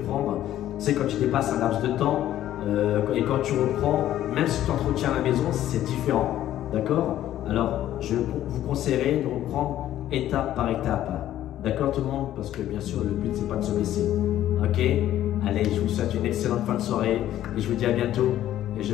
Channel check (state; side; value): quieter; right; 12.6 dB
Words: prendre, tu sais quand tu dépasses un laps de temps et quand tu reprends, même si tu t'entretiens à la maison, c'est différent, d'accord? Alors je vous conseillerais de reprendre étape par étape. D'accord tout le monde? Parce que bien sûr, le but, c'est pas de se blesser. Ok? Allez, je vous souhaite une excellente fin de soirée et je vous dis à bientôt et je